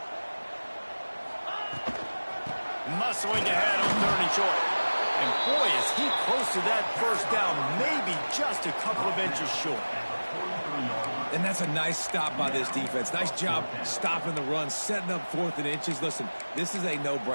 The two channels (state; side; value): inverted; both; correlation -1.00